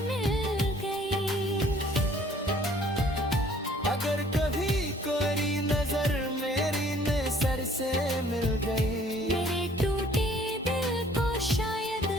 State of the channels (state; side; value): normal; both; correlation 0.57